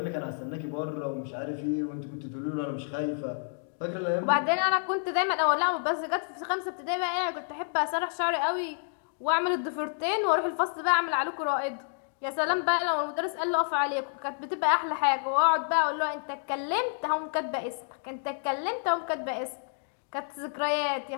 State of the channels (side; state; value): right; silent; digital silence